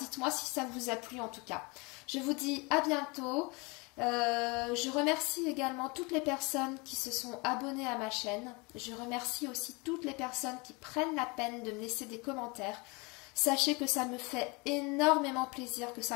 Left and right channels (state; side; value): quieter; right; 27.9 dB